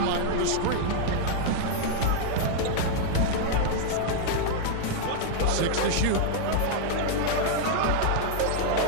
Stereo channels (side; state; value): both; different; correlation -0.01